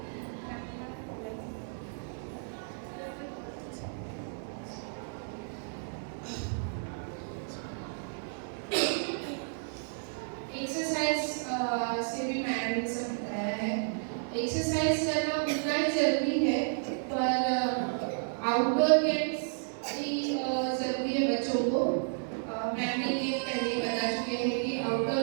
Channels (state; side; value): silent; left; digital silence